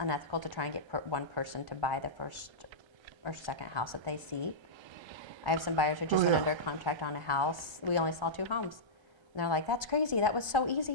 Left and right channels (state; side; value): late; left; 1.3 ms